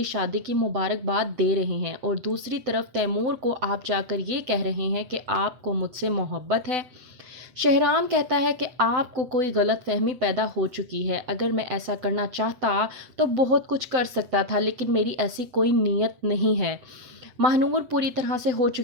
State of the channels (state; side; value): late; left; 7.9 ms